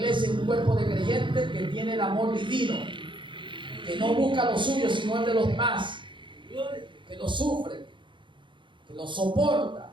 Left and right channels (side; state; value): left; late; 0.23 ms